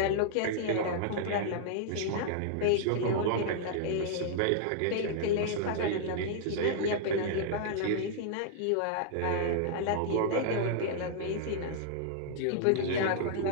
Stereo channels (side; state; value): both; different; correlation -0.01